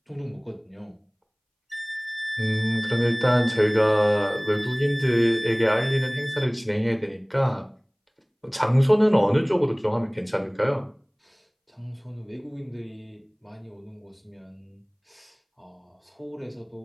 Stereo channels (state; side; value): identical; both; correlation 1.00